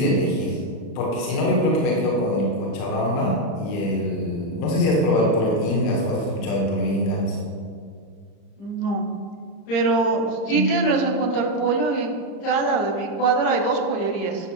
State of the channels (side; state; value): right; late; 35 ms